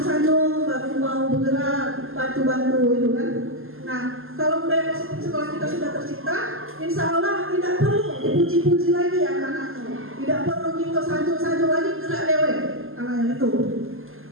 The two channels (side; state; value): left; late; 0.61 ms